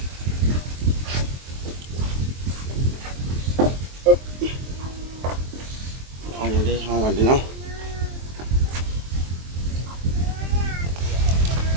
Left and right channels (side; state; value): left; late; 23 ms